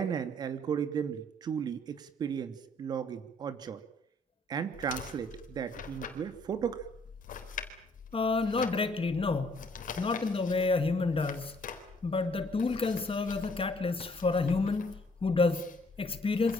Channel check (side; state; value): both; normal; correlation 0.63